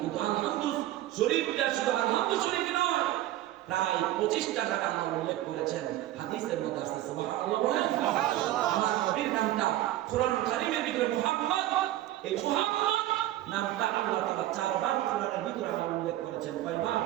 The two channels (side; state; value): left; quieter; 14.5 dB